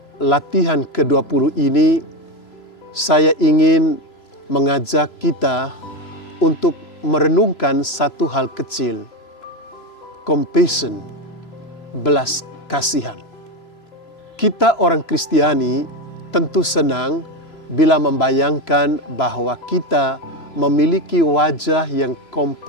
latihan ke-20 ini, saya ingin mengajak kita untuk merenungkan satu hal kecil, compassion, belas kasihan. Kita orang Kristiani tentu senang bila membayangkan bahwa kita memiliki wajah yang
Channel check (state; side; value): late; right; 3.0 ms